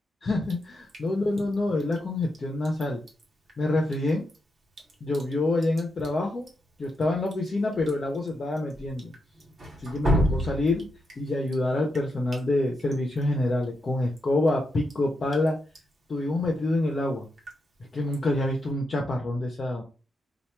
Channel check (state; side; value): normal; both; correlation 0.84